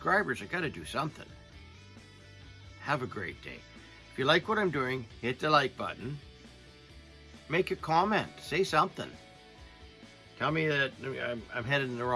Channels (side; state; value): both; identical; correlation 1.00